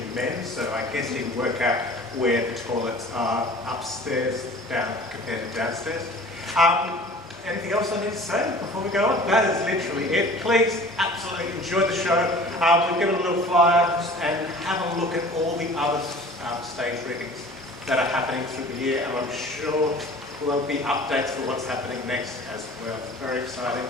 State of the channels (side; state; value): both; normal; correlation 0.44